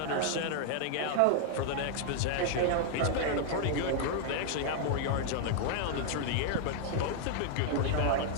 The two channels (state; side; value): different; both; correlation 0.00